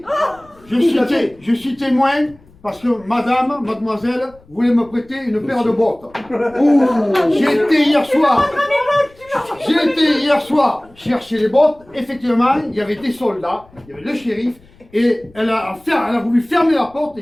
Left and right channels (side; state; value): left; noise; rumble, 27 dB below the sound